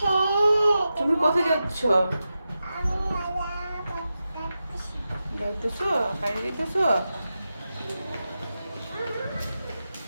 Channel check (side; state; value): both; inverted; correlation -0.91